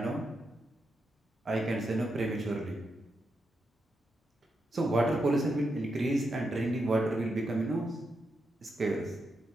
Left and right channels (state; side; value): normal; both; correlation 0.85